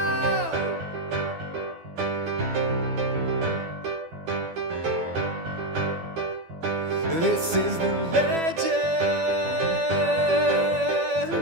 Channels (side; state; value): left; late; 12 ms